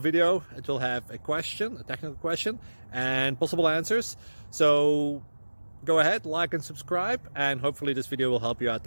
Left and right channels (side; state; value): both; inverted; correlation -1.00